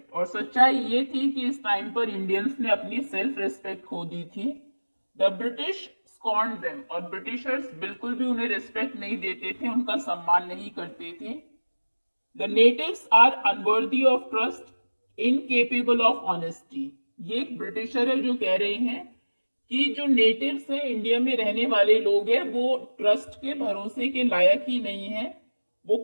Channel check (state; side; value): inverted; both; correlation -1.00